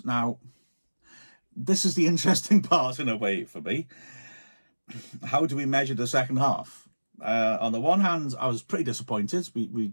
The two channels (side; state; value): both; inverted; correlation -1.00